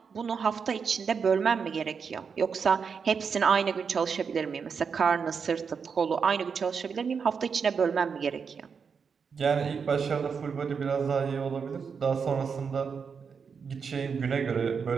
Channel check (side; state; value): left; quieter; 6.0 dB